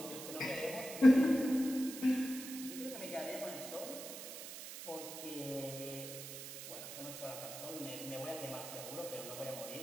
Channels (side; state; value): right; noise; hiss, 10 dB below the sound